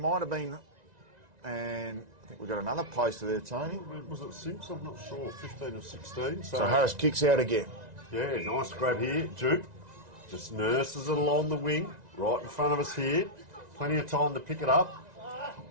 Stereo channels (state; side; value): late; left; 1.9 ms